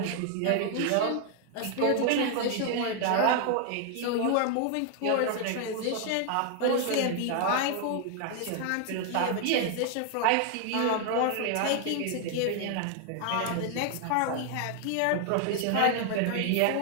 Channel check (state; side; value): different; both; correlation 0.00